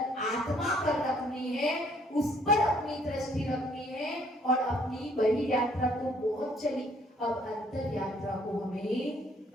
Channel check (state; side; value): normal; both; correlation 0.63